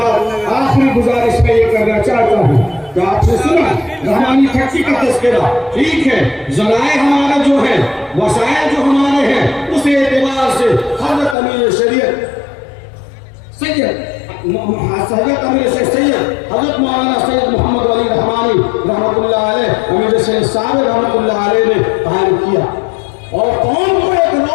آخری گزارش میں یہ کرنا چاہتا ہوں کہ آپ نے سنا رحمانی کھٹی کا تذکرہ، ٹھیک ہے، ذرائع ہمارا جو ہے، وسائل جو ہمارے ہیں، اس اعتبار سے حضرت امیر شریعت حضرت مولانا سید محمد علی رحمانی رحمۃ اللہ علیہ، امیر سید صاحب رحمۃ اللہ علیہ نے قائم کیا اور قوم کو ایک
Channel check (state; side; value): drops out; right; at 11.4 s